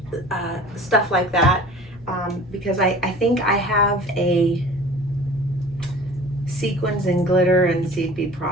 stuff like that, because I think I have a sequins and glitter and seed bead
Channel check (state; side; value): normal; both; correlation 0.43